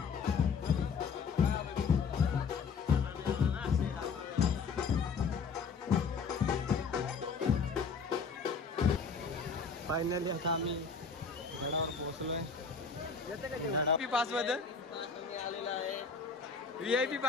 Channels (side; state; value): right; quieter; 5.2 dB